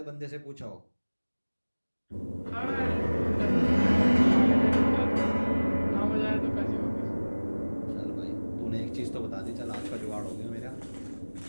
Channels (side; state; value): both; inverted; correlation -1.00